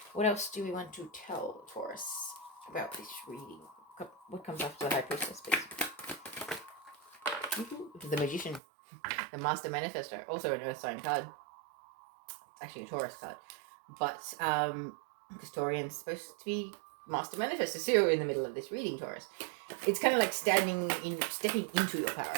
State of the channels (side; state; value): left; drops out; at 8.6 s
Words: What else do we want to tell Taurus about this reading? What comes after the High Priestess, please? The Magician, the Master Manifestor, also an Earth sign card. It's actually a Taurus card, but because Taurian's supposed to be Master Manifestor, so you're in the middle of this reading, Taurus. It's kind of like stepping into your power.